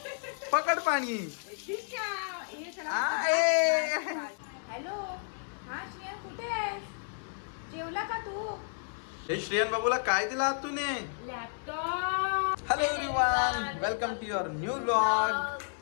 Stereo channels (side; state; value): right; silent; digital silence